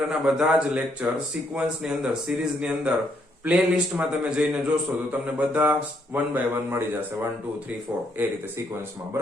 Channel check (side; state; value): both; normal; correlation 0.73